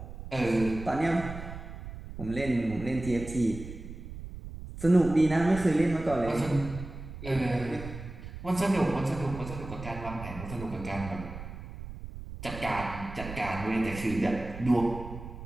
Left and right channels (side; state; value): right; noise; rumble, 11 dB below the sound